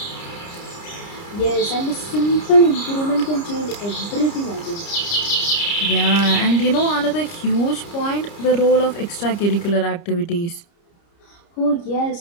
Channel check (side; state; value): right; late; 29 ms